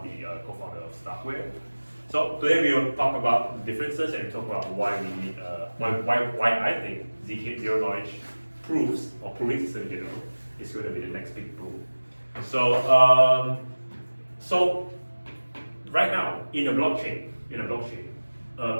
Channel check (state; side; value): inverted; both; correlation -1.00